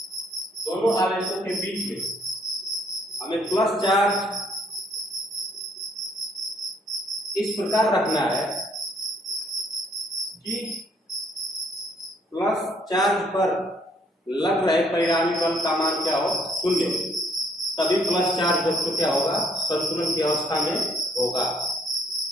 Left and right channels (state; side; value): normal; both; correlation 0.65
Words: दोनों आवेशों के बीच में हमें प्लस चार्ज इस प्रकार रखना है कि प्लस चार्ज पर लग रहे परिणामी बल का मान क्या हो, 0। तभी प्लस चार्ज बच्चों क्या होगा, संतुलन की अवस्था में होगा।